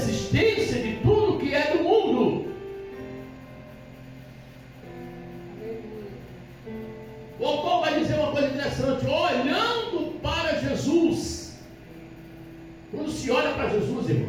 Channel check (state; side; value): identical; both; correlation 1.00